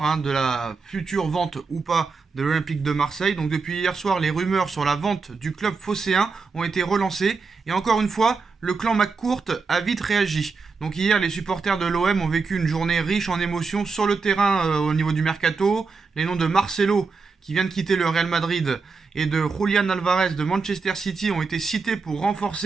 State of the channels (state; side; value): quieter; left; 4.6 dB